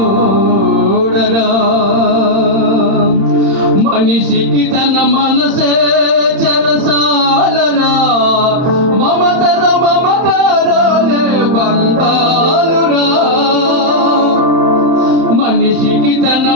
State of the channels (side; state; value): left; late; 31 ms